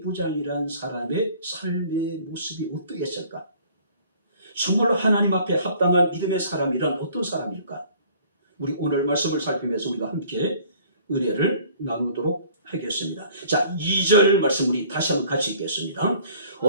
사람의 삶의 모습이 어떠했을까? 정말로 하나님 앞에 합당한 믿음의 사람이란 어떤 사람일까? 우리 오늘 말씀을 살피면서 우리가 함께 은혜를 나누도록 하겠습니다. 자, 2절 말씀 우리 다시 한번 같이 읽겠습니다.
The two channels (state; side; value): inverted; both; correlation -0.53